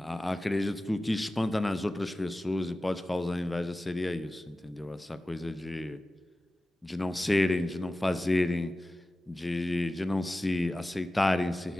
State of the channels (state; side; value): normal; both; correlation 0.95